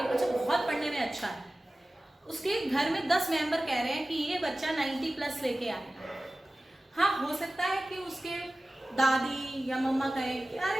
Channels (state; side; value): normal; both; correlation 0.96